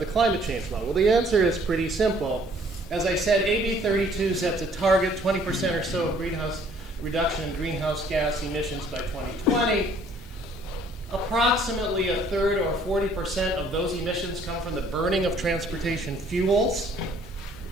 climate change law? Well, the answer is pretty simple. As I said, AB 32 sets a target, 20% or so of greenhouse reduction in greenhouse gas emissions by 2020. Approximately a third or 40% of those emissions come from the burning of transportation fuels.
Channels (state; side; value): normal; both; correlation 0.59